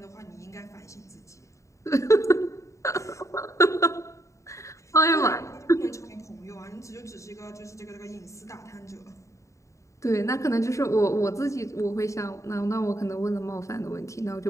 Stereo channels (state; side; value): late; right; 0.15 ms